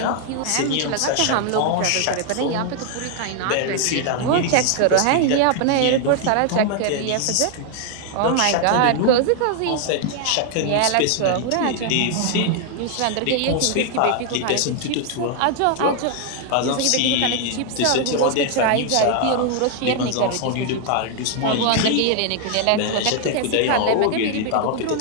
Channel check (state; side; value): different; both; correlation 0.00